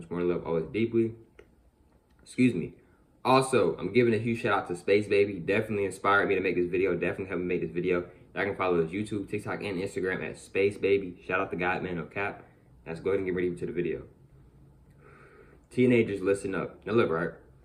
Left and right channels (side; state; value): both; identical; correlation 1.00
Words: more. Love always deeply. Excuse me. Also, I'm giving a huge shout out to Space Baby. Definitely inspired me to make this video. Definitely helped me make this video. I can follow his YouTube, TikTok, and Instagram at Space Baby. Shout out to God, man, no cap. Let's go ahead and get ready to the video. Teenagers, listen up. Now look, right?